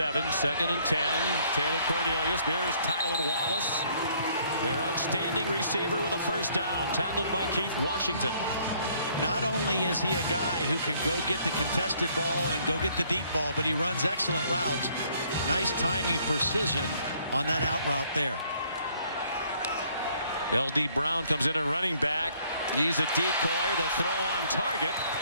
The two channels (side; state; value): both; inverted; correlation -0.63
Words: 2nd and 10. Taylor Cornelius. There's Tylan Wallace, their outstanding receiver, with a first down, tackled by Keith Washington. Not only is he a guy who can go get the contested ball and go get the deep ball, but he runs excellent routes. Nice timing, precision on that out route there. L.D. Brown comes in at running back. He's a decoy. The throw on target.